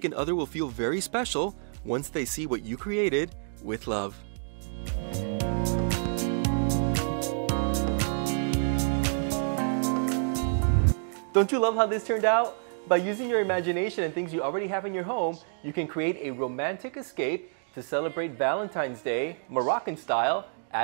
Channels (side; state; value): left; silent; digital silence